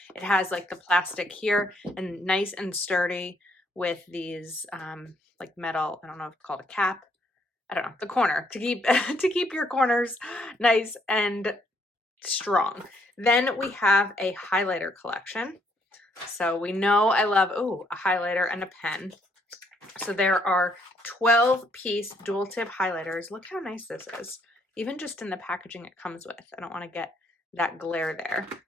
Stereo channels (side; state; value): both; normal; correlation 0.70